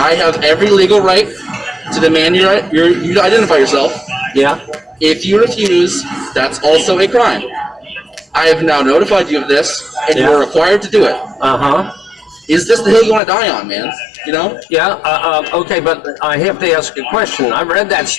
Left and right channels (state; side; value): drops out; right; at 13.2 s